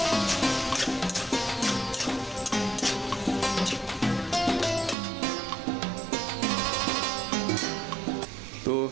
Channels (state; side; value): drops out; left; at 5.0 s